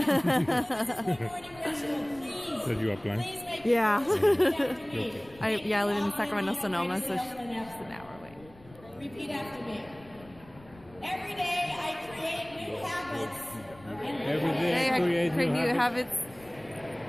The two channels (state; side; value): noise; left; rumble, 23 dB below the sound